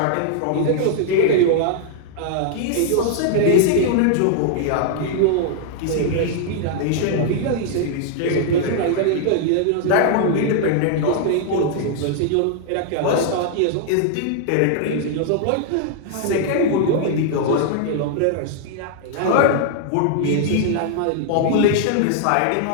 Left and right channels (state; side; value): different; both; correlation -0.01